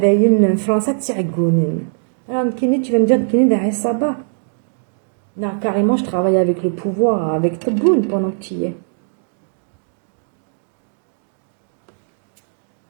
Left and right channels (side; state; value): left; silent; digital silence